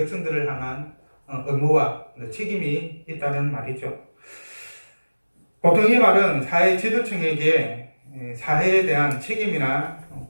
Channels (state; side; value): inverted; both; correlation -1.00